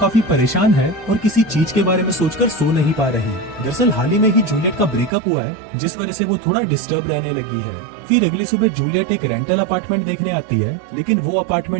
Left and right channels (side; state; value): left; drops out; at 5.1 s